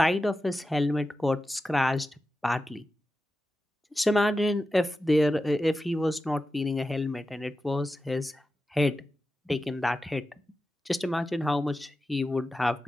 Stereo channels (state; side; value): normal; both; correlation 0.92